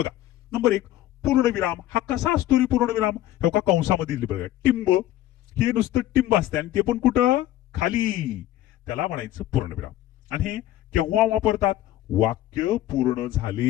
नंबर 1 पूर्णविराम. हा कसा असतो रे पूर्णविराम? हे का कंसामध्ये दिले बघा. टिंब, हे नुसतं टिंब असते आणि ते पण कुठं? खाली. त्याला म्हणायचं पूर्णविराम. आणि हे केव्हा वापरतात? वाक्य पूर्ण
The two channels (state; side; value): quieter; right; 13.9 dB